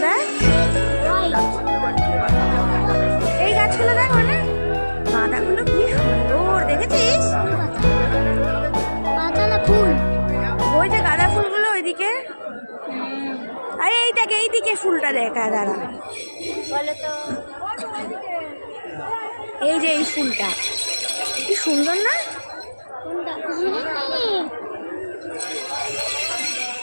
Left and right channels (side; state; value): both; inverted; correlation -1.00